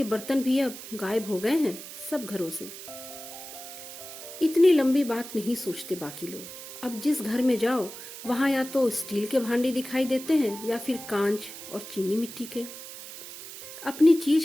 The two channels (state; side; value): noise; right; hiss, 12 dB below the sound